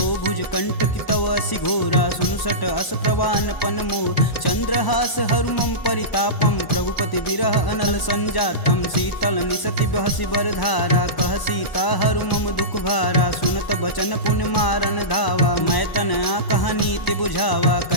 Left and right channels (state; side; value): late; right; 1.0 ms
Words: भुज कंठ की तव असि घोरा सुनुसट अस प्रवान पन मोर। चंद्रहास हरु मम परितापम प्रभुपति बिरह अनल संजातम। शीतल निसति बहसि बर धारा कह सीता हरु मम दुख भारा। सुनत बचन पुन मारन धावा मैं तन कहानी ते बुझावा।